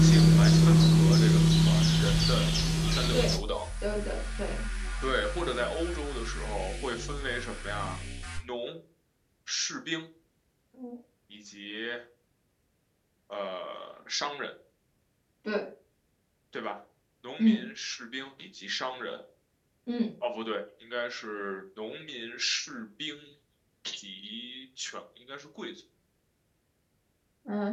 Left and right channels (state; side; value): identical; both; correlation 1.00